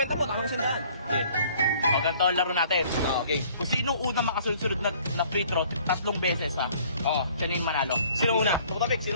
mo, tama na 100. O, ganito ang laro natin. Okay. Kung sino unang makasunod na free throw 3 beses ha. Oo. Sino yung manalo? Sino una? Tumatabik,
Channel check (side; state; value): both; inverted; correlation -0.56